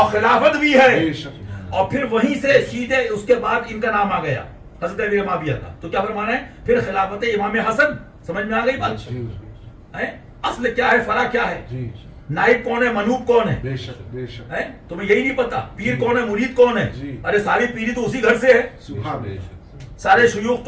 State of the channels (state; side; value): identical; both; correlation 1.00